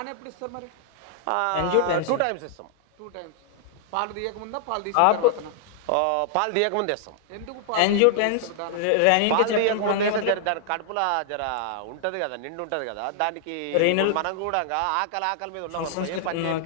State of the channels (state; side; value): different; both; correlation -0.01